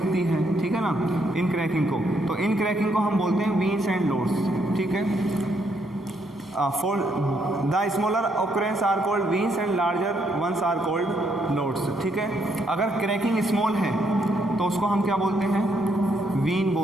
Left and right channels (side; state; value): both; normal; correlation 0.74